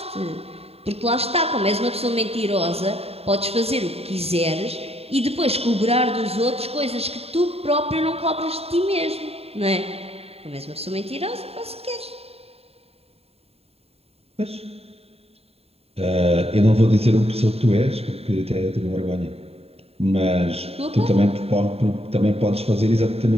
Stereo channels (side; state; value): left; late; 0.29 ms